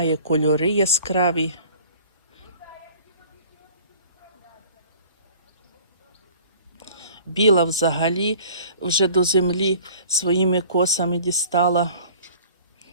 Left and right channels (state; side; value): inverted; both; correlation -0.49